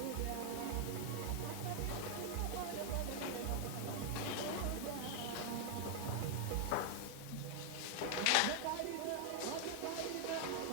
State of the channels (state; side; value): different; both; correlation 0.00